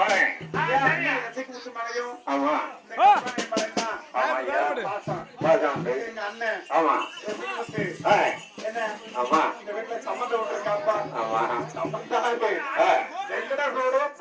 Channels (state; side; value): identical; both; correlation 1.00